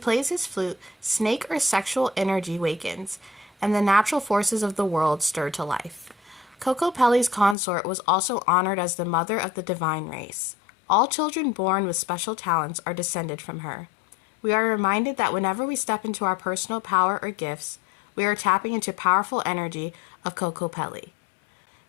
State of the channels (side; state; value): right; drops out; at 7.6 s